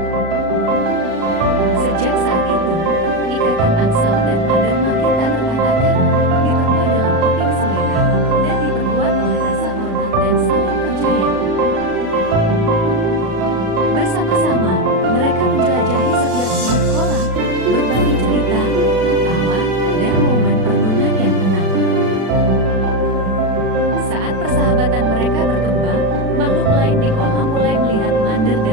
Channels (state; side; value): late; left; 36 ms